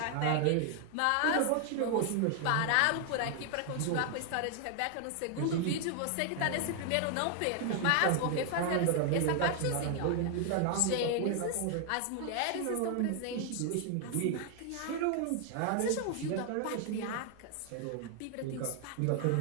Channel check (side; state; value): both; different; correlation 0.00